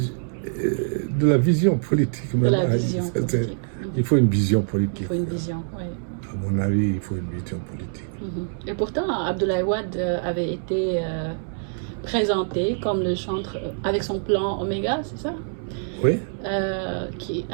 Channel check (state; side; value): silent; left; digital silence